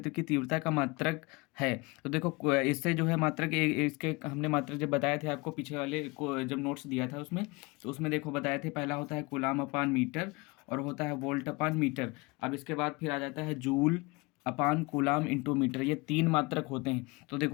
की तीव्रता का मात्रक है। तो देखो इससे जो है मात्रक इसके हमने मात्रक जब बताए थे आपको पीछे वाले को जब नोट्स दिया था उसमें, तो उसमें देखो बताए थे, पहला होता है कूलाम अपान मीटर और होता है वोल्ट अपान मीटर। अब इसके बाद फिर आ जाता है जूल अपान कूलाम इंटू मीटर। ये तीन मात्रक होते हैं। तो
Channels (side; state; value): right; quieter; 25.9 dB